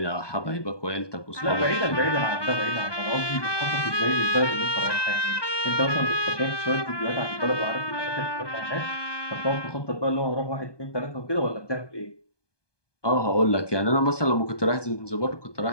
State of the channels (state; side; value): late; right; 1.2 ms